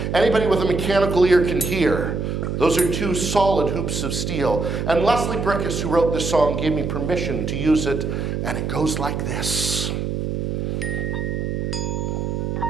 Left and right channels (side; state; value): right; noise; hum, 2 dB below the sound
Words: Anybody with a mechanical ear can hear. Those are 2 solid hoops of steel. And Leslie Brickus, who wrote this song, gave me permission to use it, and it goes like this.